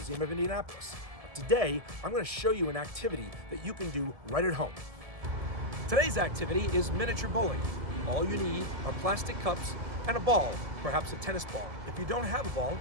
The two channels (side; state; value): left; late; 1.7 ms